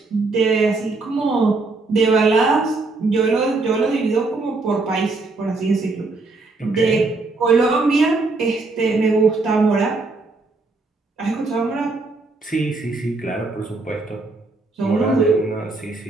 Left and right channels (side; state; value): left; quieter; 3.5 dB